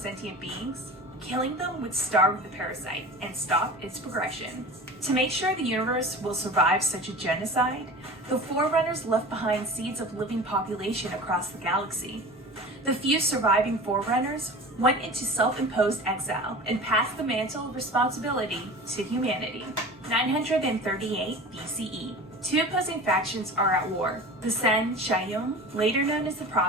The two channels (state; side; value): normal; both; correlation 0.36